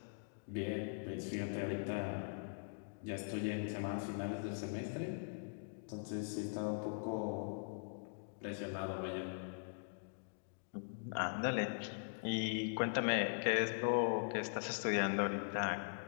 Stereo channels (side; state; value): right; silent; digital silence